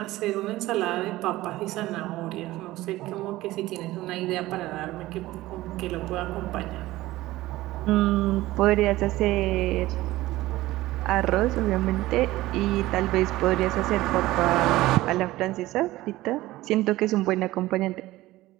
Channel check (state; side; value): quieter; left; 17.3 dB